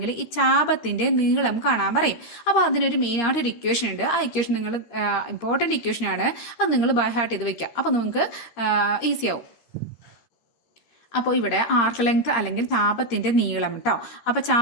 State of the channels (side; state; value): right; late; 13 ms